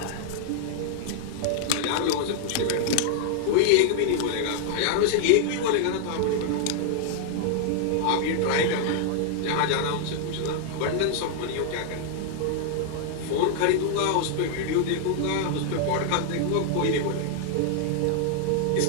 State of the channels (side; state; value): both; different; correlation 0.00